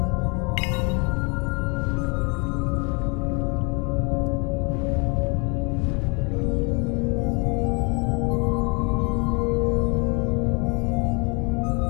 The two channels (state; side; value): quieter; right; 32.4 dB